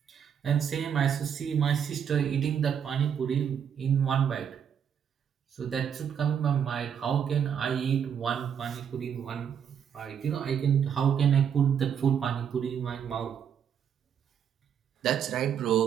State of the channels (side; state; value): left; quieter; 8.1 dB